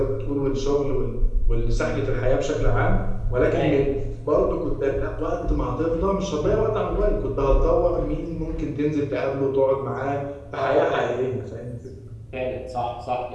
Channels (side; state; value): both; identical; correlation 1.00